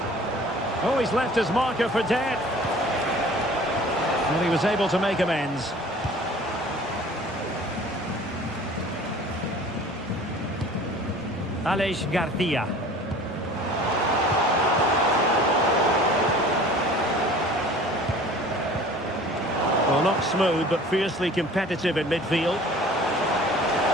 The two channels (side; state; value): both; normal; correlation 0.46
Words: Oh, he's left his marker for dead. Well, he was able to make amends. Aleix Garcia. Well, not smooth, but fiercely competitive in midfield.